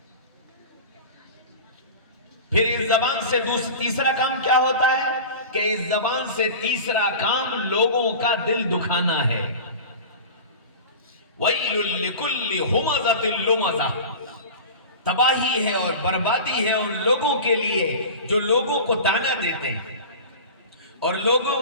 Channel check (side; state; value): both; inverted; correlation -0.33